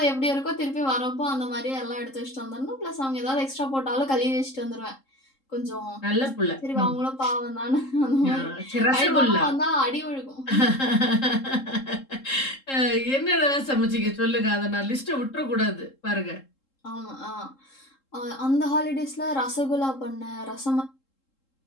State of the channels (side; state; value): right; late; 3.7 ms